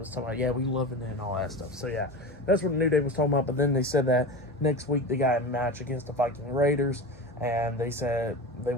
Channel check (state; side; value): normal; both; correlation 0.28